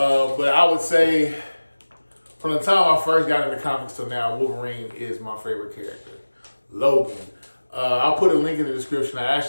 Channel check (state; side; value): inverted; both; correlation -1.00